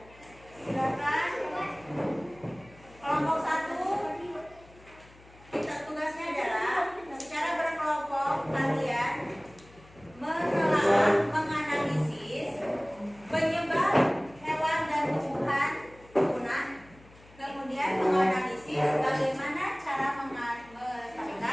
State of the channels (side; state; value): left; noise; hum, 24 dB below the sound